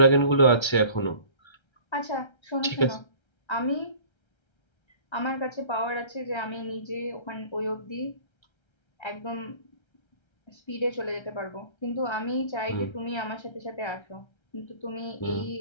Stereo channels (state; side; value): late; right; 1.3 ms